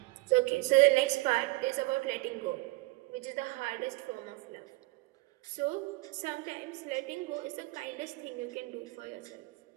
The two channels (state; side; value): quieter; left; 21.6 dB